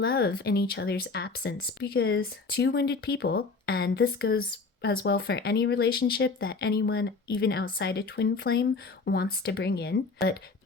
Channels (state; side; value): quieter; right; 4.2 dB